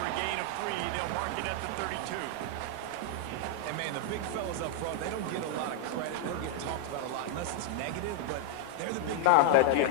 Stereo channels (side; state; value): both; different; correlation 0.00